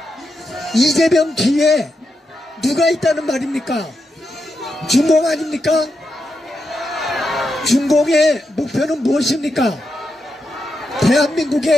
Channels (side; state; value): both; normal; correlation 0.85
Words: 이재명 뒤에 누가 있다는 말입니까? 중공 아닙니까? 중공의 목표는 무엇입니까?